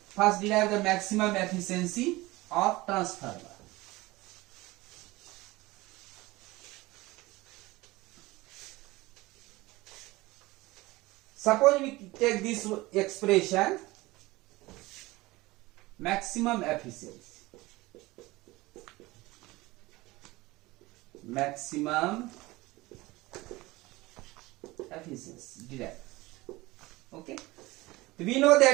First derive the maximum efficiency of transformer. Suppose we take this expression, maximum efficiency. Maximum efficiency derived. Okay. We know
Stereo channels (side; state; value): left; quieter; 20.5 dB